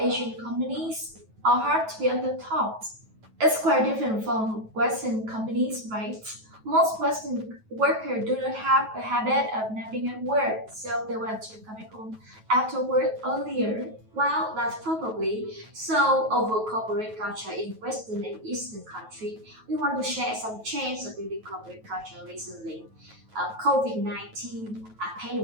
companies are hard to be on the top. It's quite different from Western companies, right? Most Western workers do not have a habit of napping at work, so they want to come back home after work earlier. Well, that's probably so over corporate culture in Western and Eastern country. We want to share some change of building corporate culture recently. COVID-19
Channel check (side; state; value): left; late; 9.2 ms